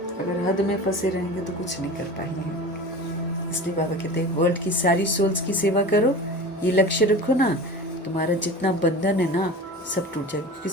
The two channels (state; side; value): normal; both; correlation 0.34